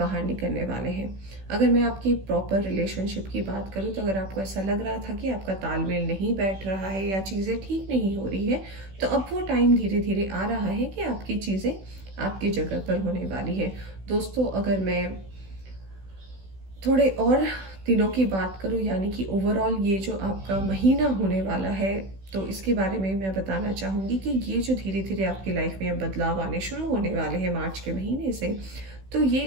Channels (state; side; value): late; left; 16 ms